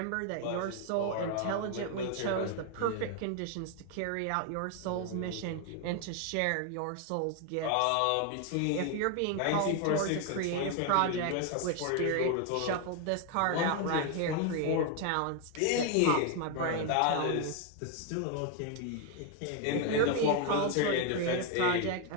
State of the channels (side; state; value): both; different; correlation 0.01